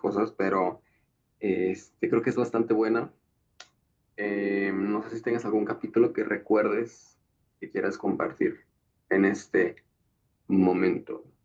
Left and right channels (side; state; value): both; identical; correlation 1.00